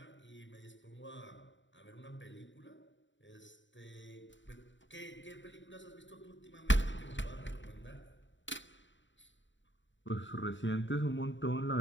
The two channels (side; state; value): right; late; 0.54 ms